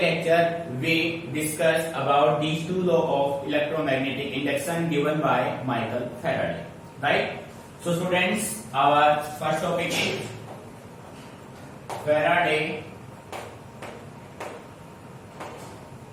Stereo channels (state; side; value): identical; both; correlation 1.00